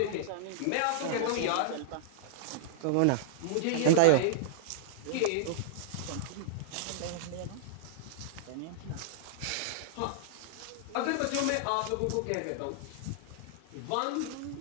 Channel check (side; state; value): both; different; correlation -0.01